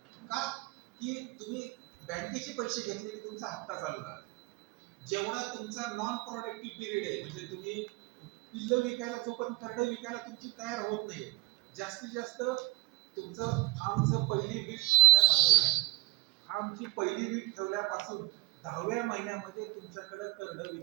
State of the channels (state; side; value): quieter; left; 25.0 dB